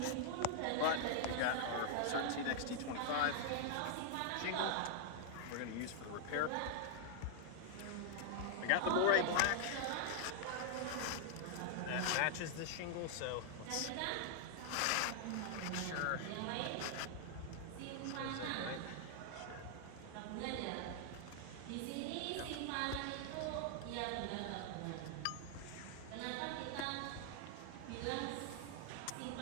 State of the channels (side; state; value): both; different; correlation 0.00